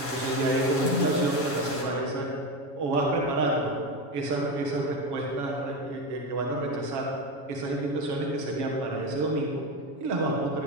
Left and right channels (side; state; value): left; late; 7.2 ms